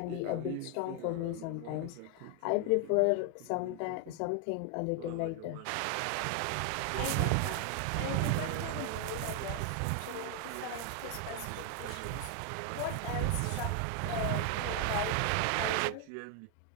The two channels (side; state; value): both; different; correlation 0.00